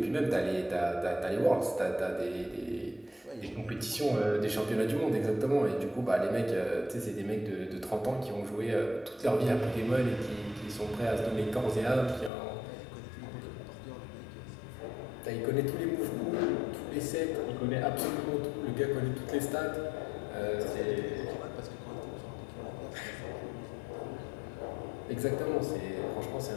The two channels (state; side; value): drops out; right; at 12.3 s